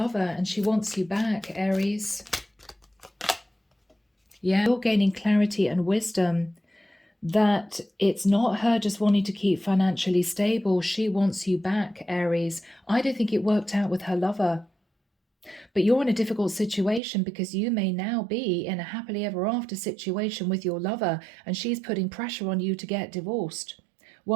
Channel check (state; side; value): drops out; left; at 17.0 s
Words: and she wants you back, Aries. Yeah, you're gaining clarity and wisdom that it's not her just wanting to keep financially stable. She wants you back, Aries. I don't think it worked out with her lover. But you're in a difficult situation because you may now be in a happily ever after situation with your lover and she's putting pressure on you to get divorced.